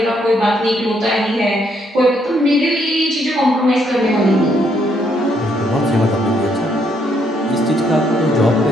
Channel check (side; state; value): both; normal; correlation 0.72